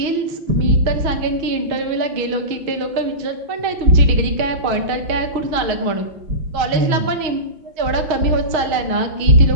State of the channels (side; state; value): left; late; 6.4 ms